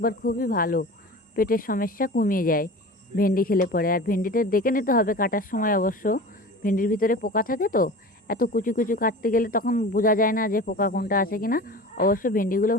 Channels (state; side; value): normal; both; correlation 0.35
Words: খুবই ভালো, পেটের সমস্যা কমিয়ে যায় ভেন্ডি খেলে পরে। আর ভেন্ডিটা দেখে নিতে হবে কাটার সময়, অবশ্য ভেন্ডির ভিতরে পোকা থাকে তো, এত কুচু কুচু কাটতে গেলে তখন বোঝা যায় না যে পোকা কোনটা আছে কিনা। অবশ্য ভেন্ডিগুলো